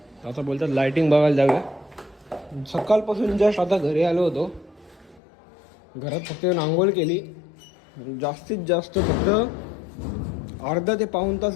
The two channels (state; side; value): drops out; right; at 5.2 s